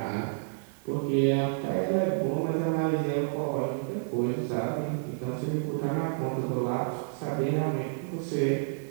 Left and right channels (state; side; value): silent; left; digital silence